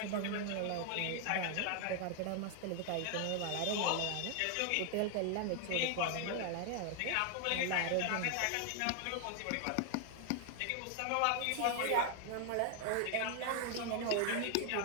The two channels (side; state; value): both; different; correlation 0.00